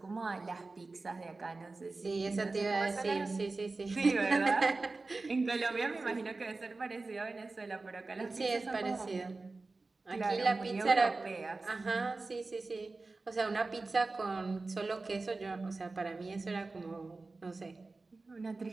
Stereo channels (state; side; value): quieter; left; 3.6 dB